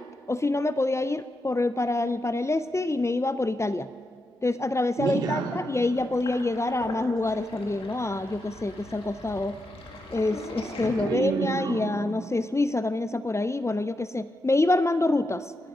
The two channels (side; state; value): both; normal; correlation 0.85